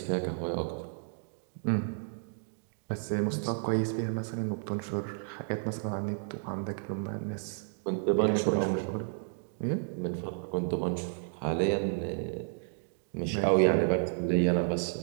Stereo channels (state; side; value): silent; left; digital silence